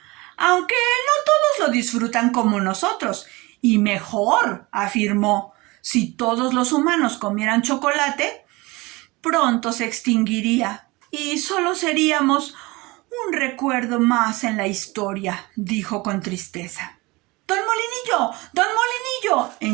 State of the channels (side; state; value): left; quieter; 23.2 dB